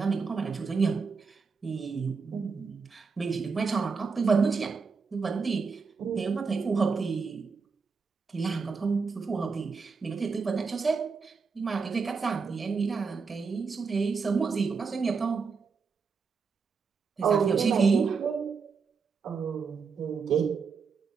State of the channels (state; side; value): quieter; left; 5.2 dB